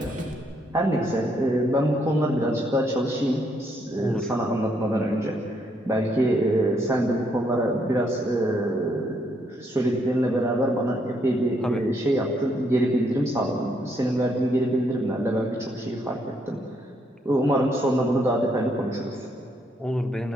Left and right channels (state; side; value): normal; both; correlation 0.73